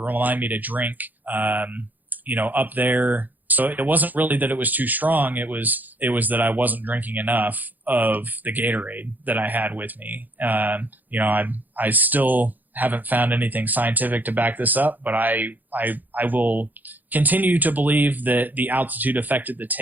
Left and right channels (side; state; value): left; late; 0.084 ms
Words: me to drink, up there. So it wasn't really that it was too strong. It was that I wasn't drinking enough of the Gatorade that I had with me. I still haven't found anything scientific to back this up, but I will continue to believe that the altitude affected the